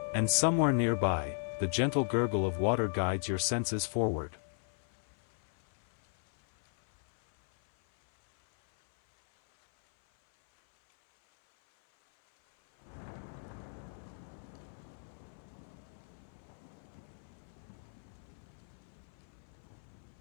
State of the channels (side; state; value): right; silent; 54 dB below the other